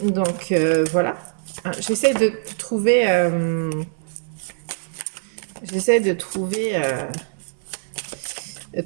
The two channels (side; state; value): left; silent; digital silence